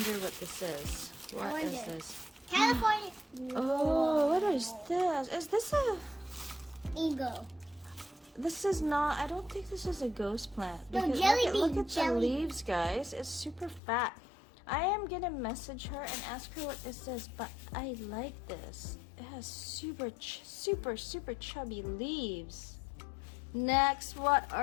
what this is. What is this? California. Oh, what is this? Is this a... Ego. This is not... I don't think this is a ghost plant. No, Because jelly look bean, at the leaves, guys. It's super fat. I am gonna message her and ask her what this is, but I like this. It has super chubby leaves. Next, what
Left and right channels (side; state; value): right; drops out; at 13.8 s